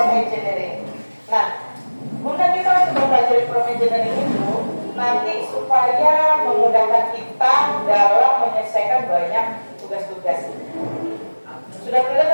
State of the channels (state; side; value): inverted; both; correlation -1.00